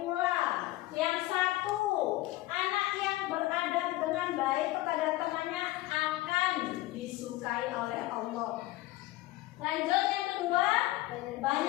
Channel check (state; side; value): quieter; right; 17.7 dB